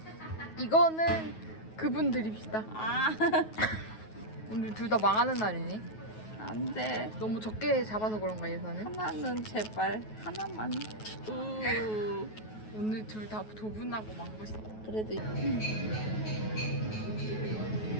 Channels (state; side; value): late; right; 9.3 ms